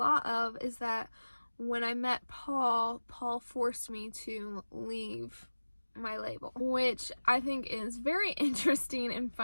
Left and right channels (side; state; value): both; inverted; correlation -1.00